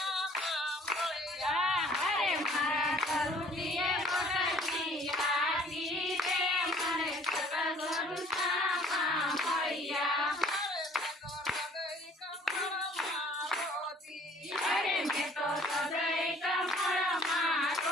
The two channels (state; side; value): normal; both; correlation 0.55